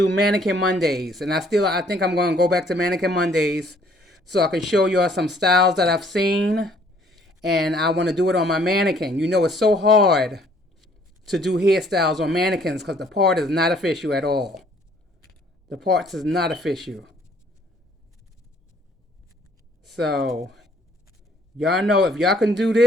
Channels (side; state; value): both; normal; correlation 0.61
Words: Mannequin Mondays, and I think I'm going to go back to Mannequin Mondays so I can show y'all some styles that I've seen, and I want to do it on my mannequin. You know, it's so hard to do hairstyles on mannequins because the part is not official at all. The parts is not official. So, y'all know if y'all can do